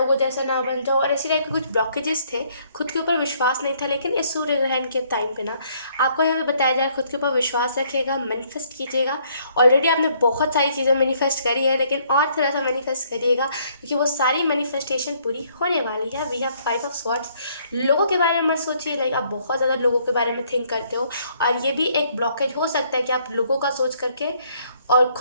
जैसा ना बन जाऊँ, और ऐसी टाइप के कुछ ब्लॉकेजेस थे। खुद के ऊपर विश्वास नहीं था, लेकिन इस सूर्य ग्रहण के टाइम पे ना आपको यहाँ पे बताया जाए खुद के ऊपर विश्वास रखिएगा, मैनिफेस्ट कीजिएगा। ऑलरेडी आपने बहुत सारी चीज़ें मैनिफेस्ट करी है, लेकिन और थोड़ा सा मैनिफेस्ट करिएगा क्योंकि वो सारी मैनिफेस्टेशन पूरी होने वाली है। We have 5 of swords. लोगों के बारे में मत सोचिए, लाइक आप बहुत ज़्यादा लोगों के बारे में थिंक करते हो, और ये भी एक ब्लॉकेज हो सकता है कि आप लोगों का सोच करके और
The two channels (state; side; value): inverted; both; correlation -0.66